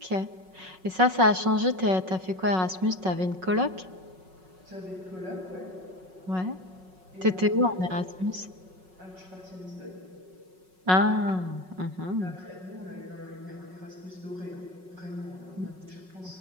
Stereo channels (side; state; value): left; late; 5.4 ms